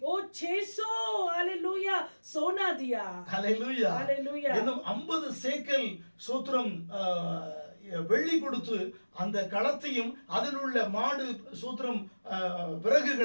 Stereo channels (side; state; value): both; inverted; correlation -1.00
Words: वो 600 हालेलुया सोना दिया ஹalleluya हालेलुया இன்னும் 50 சேக்கல் சோத்திரம் வெள்ளி கொடுத்து அந்த களத்தையும் அதில் உள்ள மாடு சூத்திரம்